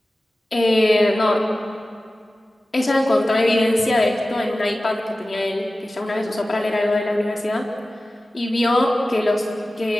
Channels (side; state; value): both; normal; correlation 0.96